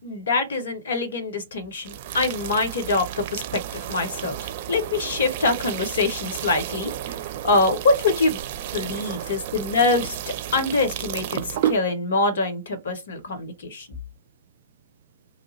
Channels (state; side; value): inverted; both; correlation -0.41